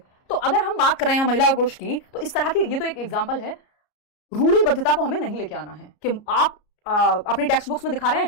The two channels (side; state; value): right; late; 33 ms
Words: तो अगर हम बात कर रहे हैं महिला और पुरुष की, तो इस तरह की ये तो एक एग्जाम्पल है। रूढ़िबद्धता को हमें नहीं लेके आना है कि आप अपनी टेक्स्ट बुक्स में दिखा रहे